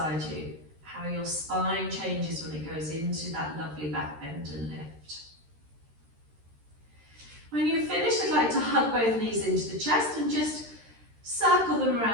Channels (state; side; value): late; left; 13 ms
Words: you. How your spine changes when it goes into that lovely back bend and lift. When you've finished, I'd like to hug both knees into the chest and just circle them